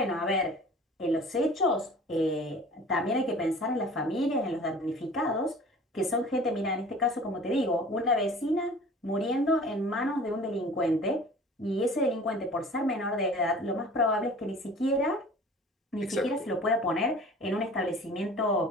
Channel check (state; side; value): normal; both; correlation 0.44